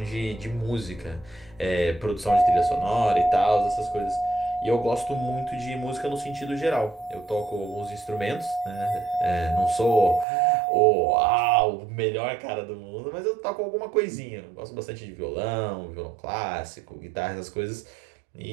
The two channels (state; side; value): drops out; left; at 10.2 s